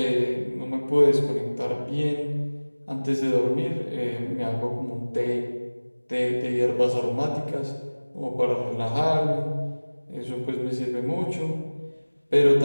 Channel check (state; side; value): inverted; both; correlation -1.00